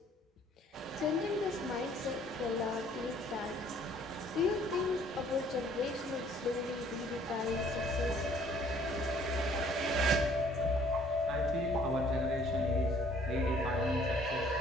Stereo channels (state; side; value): normal; both; correlation 0.59